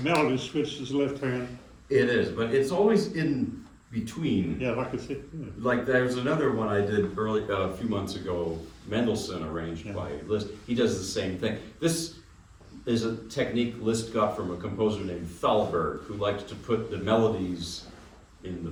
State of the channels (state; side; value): identical; both; correlation 1.00